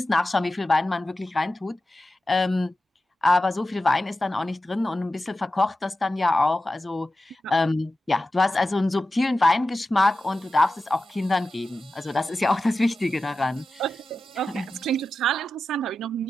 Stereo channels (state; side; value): normal; both; correlation 0.93